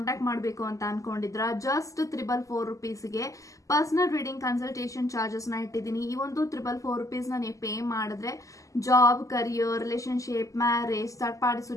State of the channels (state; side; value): late; right; 0.16 ms